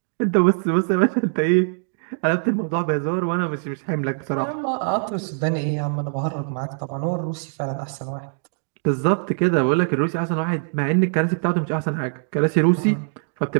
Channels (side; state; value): left; silent; 64 dB below the other